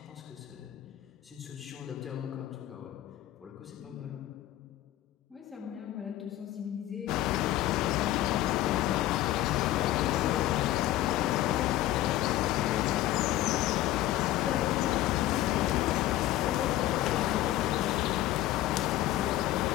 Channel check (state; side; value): quieter; right; 14.6 dB